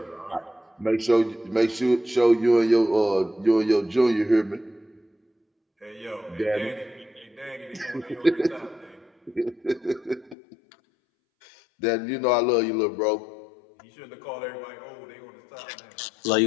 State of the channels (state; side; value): drops out; right; at 10.4 s